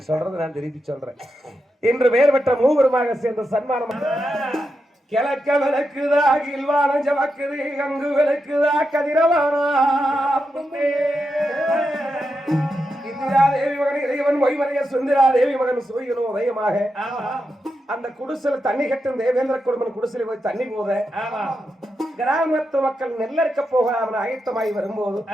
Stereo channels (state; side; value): normal; both; correlation 0.87